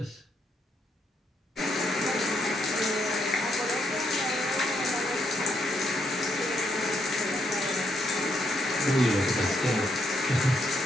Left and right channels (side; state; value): both; normal; correlation 0.76